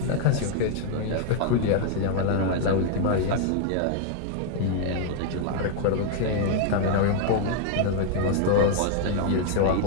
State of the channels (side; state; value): both; different; correlation 0.00